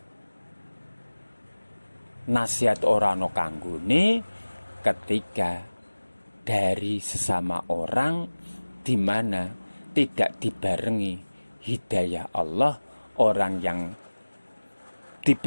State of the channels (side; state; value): both; inverted; correlation -1.00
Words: Nasihat orang no kanggone ketika dari sesama orang, di mana tidak dibarengi hidayah Allah. Orang yang